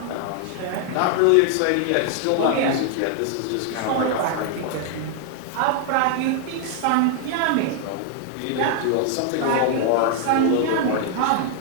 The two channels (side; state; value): both; different; correlation 0.00